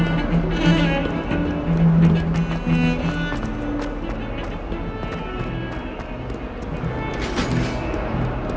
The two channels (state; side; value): identical; both; correlation 1.00